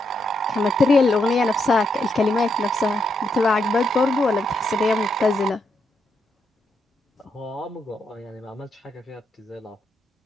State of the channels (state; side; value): normal; both; correlation 0.79